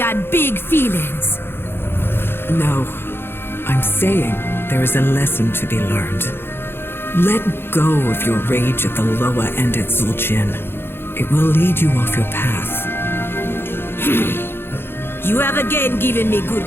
big feelings? No, I'm saying there is a lesson to be learned. Let go of your rage at the Loa and at Zul'jin. It will lead you off your path. You have again given me good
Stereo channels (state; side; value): late; right; 0.11 ms